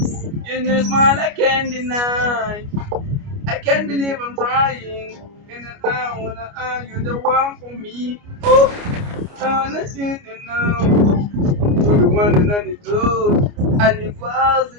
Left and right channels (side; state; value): left; late; 29 ms